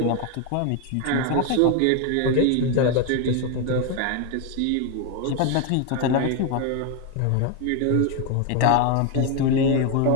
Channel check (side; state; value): both; different; correlation 0.01